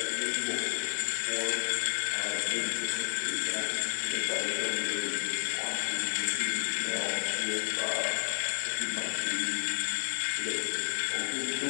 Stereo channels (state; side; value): silent; right; digital silence